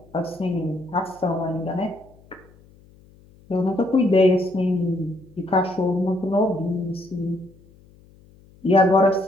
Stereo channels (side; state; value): left; noise; hum, 27 dB below the sound